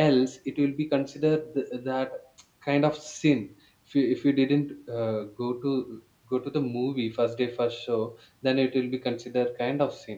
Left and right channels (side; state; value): both; identical; correlation 1.00